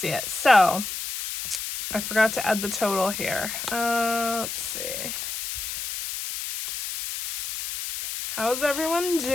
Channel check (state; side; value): noise; left; hiss, 5 dB below the sound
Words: it. So, I forgot to add the total here. Let's see. How's everyone